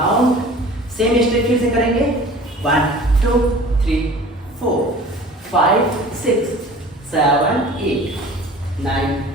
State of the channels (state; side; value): normal; both; correlation 0.44